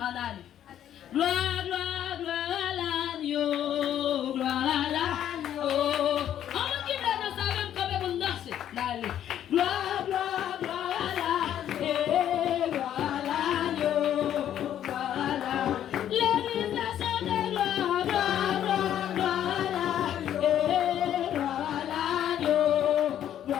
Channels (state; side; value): quieter; right; 10.7 dB